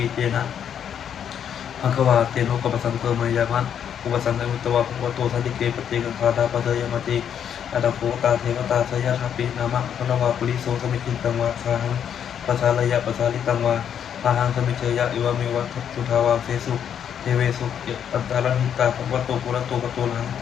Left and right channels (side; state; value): right; quieter; 8.7 dB